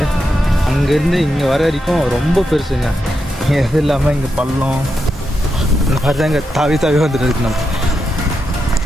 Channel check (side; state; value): both; normal; correlation 0.85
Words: அங்கேருந்து இங்கே வர வரைக்கும் ரொம்ப பெருசுங்க. எது இல்லாமல் இங்கே பள்ளம் இந்த மாதிரி தான் இங்கே தாவி வந்துட்டு இருக்கு. நம்ம